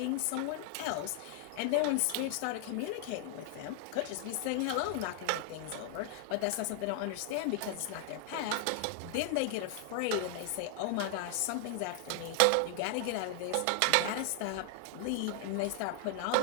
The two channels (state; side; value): different; both; correlation 0.00